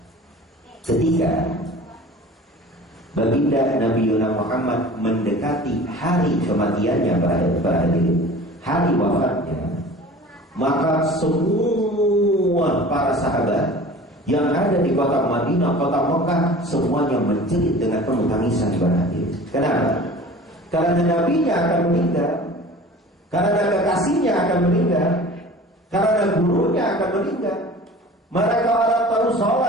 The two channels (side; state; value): both; normal; correlation 0.42